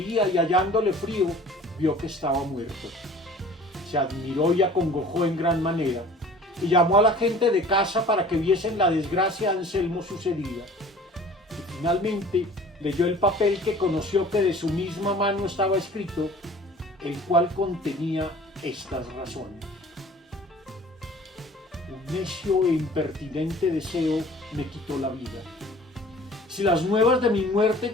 y hallándole frío, vio que estaba muerto. Se admiró y acongojó en gran manera, y llamó a la gente de casa para que viesen la desgracia a Anselmo sucedida. Y finalmente leyó el papel que conoció que de su misma mano estaba escrito, el cual contenía estas razones. Un necio e impertinente deseo me quitó la vida. Si las nuevas de mi muerte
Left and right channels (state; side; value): normal; both; correlation 0.47